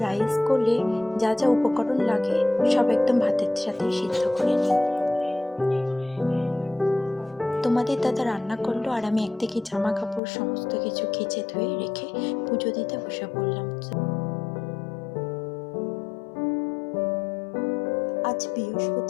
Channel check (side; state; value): right; drops out; at 10.2 s